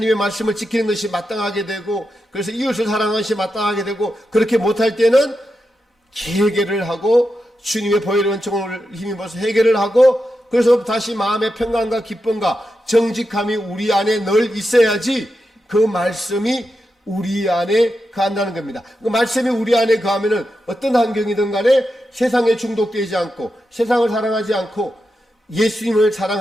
말씀을 지키는 것이 마땅하게 되고, 그래서 이웃을 사랑하는 것이 마땅하게 되고, 그렇게 못할 때는 해결을 하고 주님의 보혈의 은총을 힘입어서 해결을 하고, 그래서 다시 마음의 평강과 기쁨과 정직함이 우리 안에 늘 있어야지 그 말씀이 우리 안에 거한다는 겁니다. 그 말씀이 우리 안에 거하면은 어떤 환경이든 간에 세상에 중독되지 않고 세상을 사랑하지 않고 예수님을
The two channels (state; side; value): normal; both; correlation 0.88